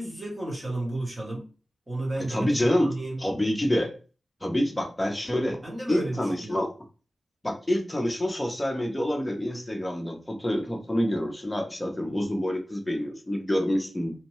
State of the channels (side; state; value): both; normal; correlation 0.97